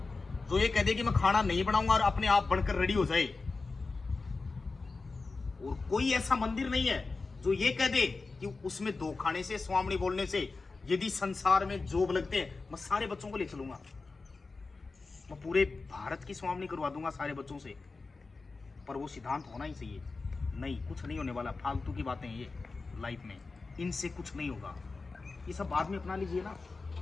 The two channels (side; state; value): right; quieter; 3.9 dB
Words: जो ये कह दे कि मैं खाना नहीं बनाऊंगा और अपने आप बनकर रेडी हो जाए। और कोई ऐसा मंदिर नहीं है जो ये कह दे कि उसमें दो खाने से, स्वामी बोलने से, यदि संसार में जॉब लगते हैं मैं सारे बच्चों को ले चलूंगा, मैं पूरे भारत की स्वामी करवा दूंगा सारे बच्चों से। पर वो सिद्धांत होना ही चाहिए। नहीं, कुछ नहीं होने वाला, फालतू की बातें ये लाइफ में, इनसे कुछ नहीं होगा। ये सब बाद में अपना लीजिए ना,